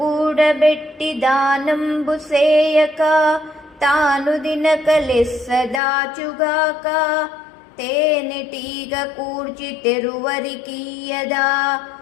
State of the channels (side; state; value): right; drops out; at 5.8 s